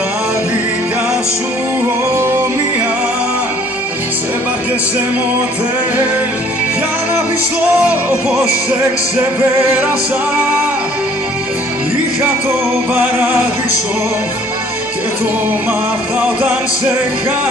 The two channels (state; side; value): normal; both; correlation 0.57